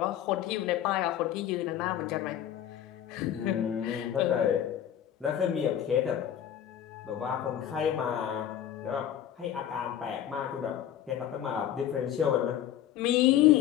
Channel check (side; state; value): right; quieter; 10.7 dB